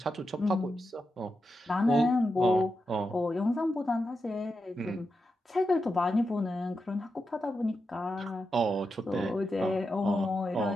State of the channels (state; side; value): normal; both; correlation 0.88